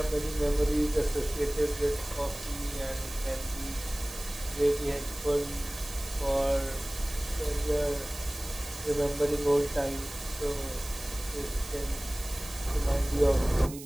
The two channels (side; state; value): right; noise; hiss, 13 dB below the sound